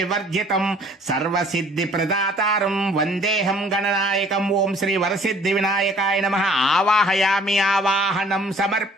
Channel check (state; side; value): normal; both; correlation 0.55